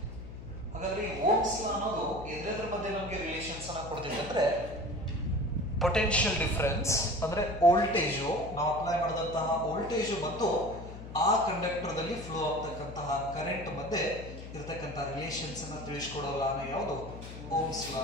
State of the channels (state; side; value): noise; left; hum, 12 dB below the sound